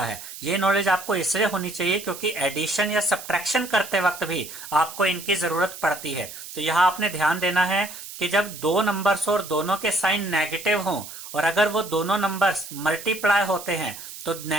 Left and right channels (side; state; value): right; noise; hiss, 12 dB below the sound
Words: है, ये नॉलेज आपको इसलिए होनी चाहिए क्योंकि एडिशन या सब्ट्रैक्शन करते वक्त भी आपको इनकी जरूरत पड़ती है। तो यहां आपने ध्यान देना है कि जब दो नंबर्स और दोनों के साइन नेगेटिव हों और अगर वो दोनों नंबर्स मल्टीप्लाई होते हैं तो